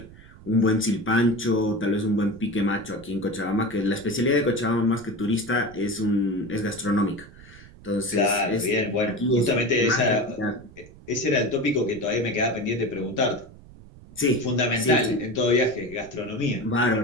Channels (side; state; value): right; noise; rumble, 20 dB below the sound